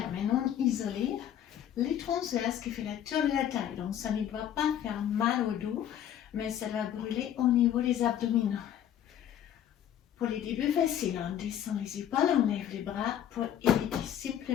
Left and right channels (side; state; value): right; quieter; 10.3 dB